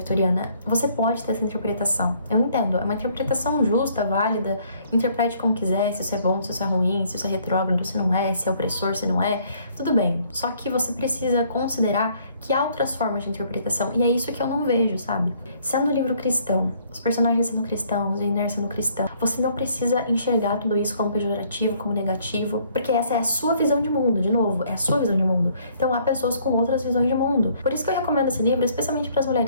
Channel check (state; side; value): inverted; both; correlation -0.63